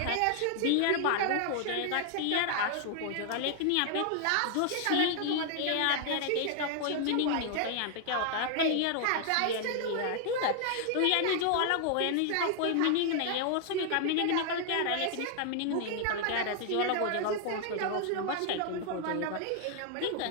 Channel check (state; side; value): different; both; correlation 0.00